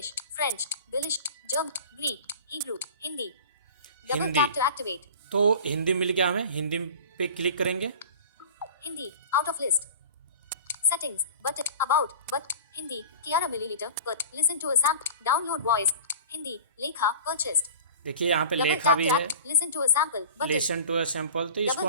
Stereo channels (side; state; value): both; inverted; correlation -0.38